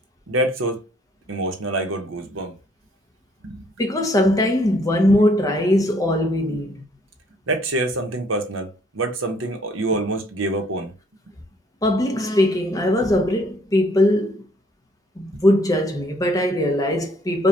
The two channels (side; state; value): both; normal; correlation 0.64